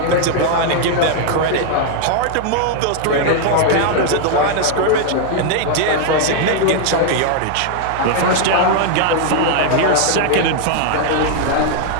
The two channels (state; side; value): different; both; correlation 0.00